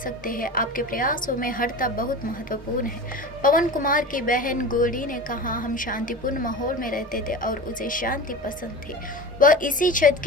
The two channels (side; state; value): both; normal; correlation 0.31